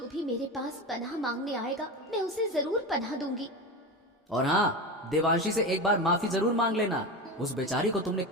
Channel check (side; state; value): both; normal; correlation 0.23